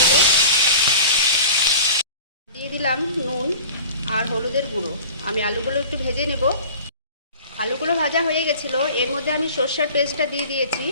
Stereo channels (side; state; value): both; inverted; correlation -0.41